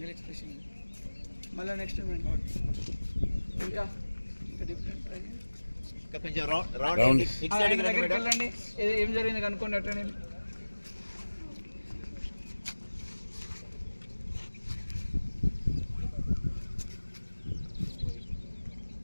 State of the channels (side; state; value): both; inverted; correlation -1.00